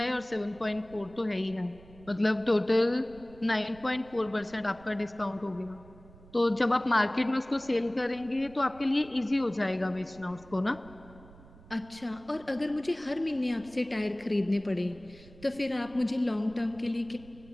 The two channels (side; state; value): right; noise; rumble, 22 dB below the sound